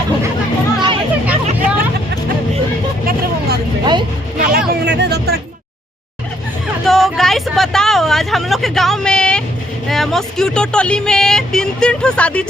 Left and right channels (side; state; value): both; normal; correlation 0.69